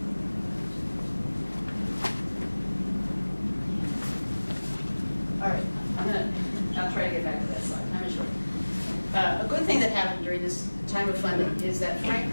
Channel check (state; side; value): inverted; both; correlation -1.00